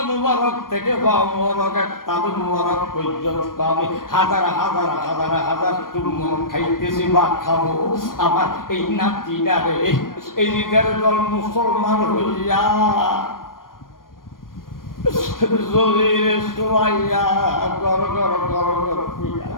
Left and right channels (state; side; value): late; right; 0.91 ms